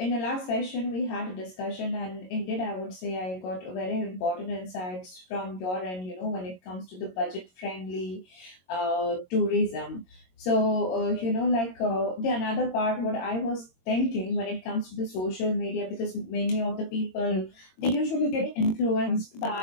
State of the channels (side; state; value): right; late; 22 ms